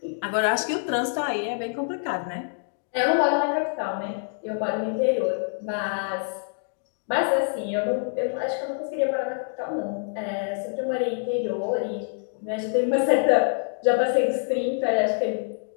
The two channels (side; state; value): right; silent; 60 dB below the other